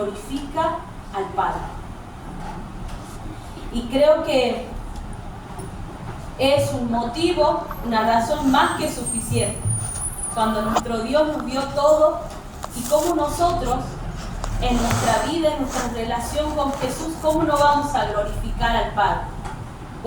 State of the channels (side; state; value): both; identical; correlation 1.00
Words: al Padre. Y creo que es un motivo, una razón más que suficiente. Cuando nuestro Dios nos dio todo y cómo nosotros en nuestra vida, en nuestra relación con Jesús, cómo no vamos a glorificar al Padre.